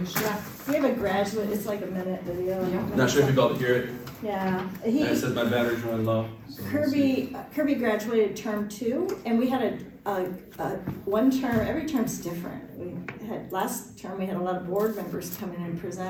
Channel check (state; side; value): identical; both; correlation 1.00